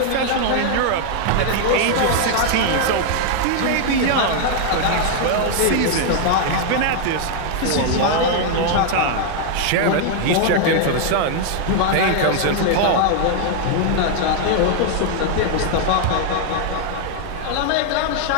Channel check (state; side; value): different; both; correlation 0.00